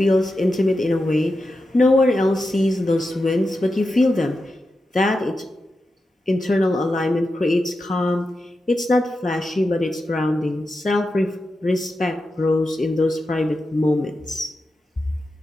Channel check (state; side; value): normal; both; correlation 0.90